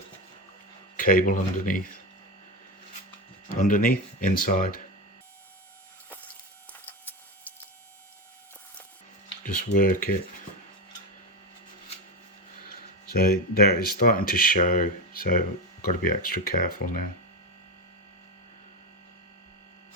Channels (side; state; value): both; normal; correlation 0.16